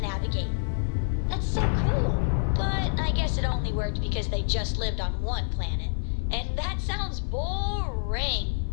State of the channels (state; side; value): silent; right; digital silence